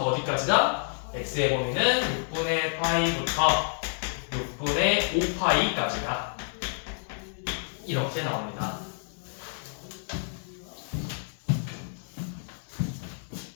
어디까지다? x의 범위는 6분의 파이부터 6분의 5파이까지다. 이렇게 나옵니다.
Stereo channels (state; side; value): silent; right; digital silence